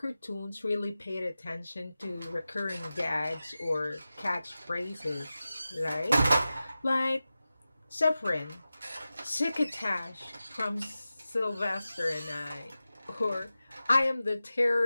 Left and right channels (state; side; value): inverted; both; correlation -0.95